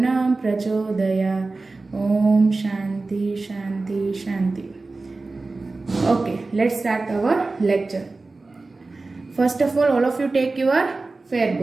प्रचोदयात्। ओम शांति शांति शांति। Okay, let's start our lecture. First of all of you take your fair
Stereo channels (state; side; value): quieter; left; 3.5 dB